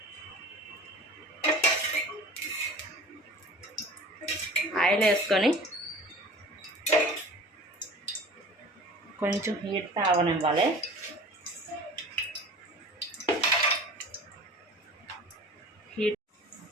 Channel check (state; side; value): normal; both; correlation 0.42